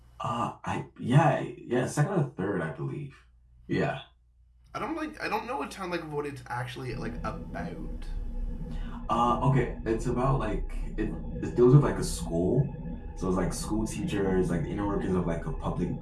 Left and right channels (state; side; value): identical; both; correlation 1.00